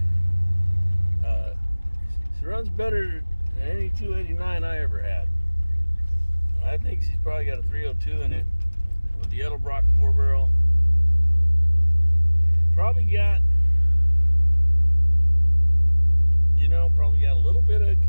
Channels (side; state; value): both; inverted; correlation -1.00